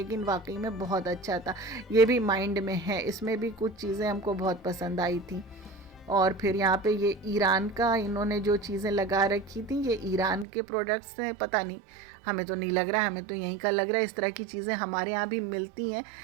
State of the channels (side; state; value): left; drops out; at 10.5 s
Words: वाकई में बहुत अच्छा था। ये भी माइंड में है, इसमें भी कुछ चीज़ें हमको बहुत पसंद आई थी। और फिर यहाँ पे ये ईरान का इन्होंने जो चीज़ें लगा रखी थी, ये ईरान के प्रोडक्ट्स हैं, पता नहीं, हमें तो नहीं लग रहा है, हमें तो यहीं का लग रहा है। इस तरह की चीज़ें हमारे यहाँ भी मिलती हैं,